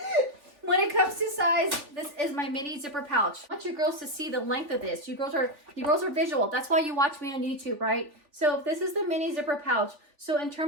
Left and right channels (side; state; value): left; late; 3.4 ms